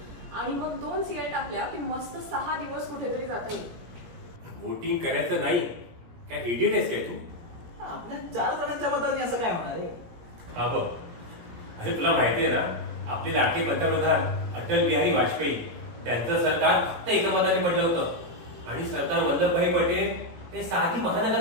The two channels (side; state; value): left; late; 17 ms